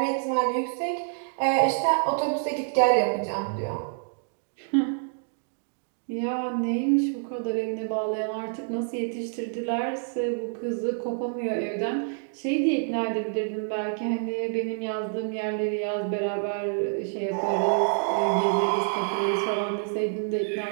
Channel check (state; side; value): silent; left; digital silence